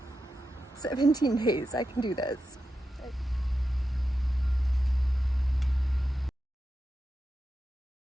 17 days, I can do this.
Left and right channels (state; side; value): normal; both; correlation 0.89